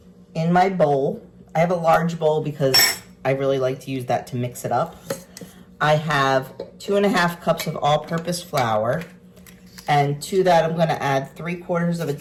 in my bowl. I have a large bowl because I really like to use that to mix it up. I have 2.5 cups of all-purpose flour, and to that I'm going to add 3/4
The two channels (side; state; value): both; identical; correlation 1.00